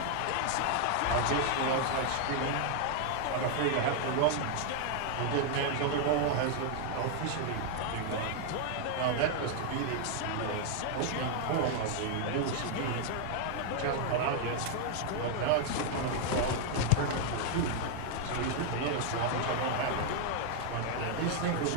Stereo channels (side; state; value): both; different; correlation 0.00